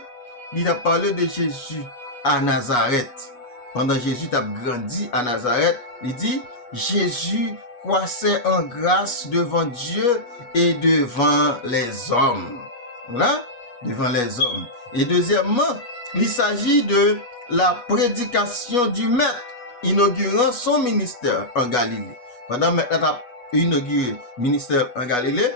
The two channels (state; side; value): late; right; 8.2 ms